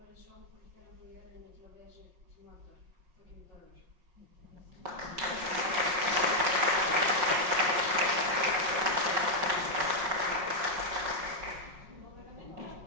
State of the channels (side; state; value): left; late; 5.5 ms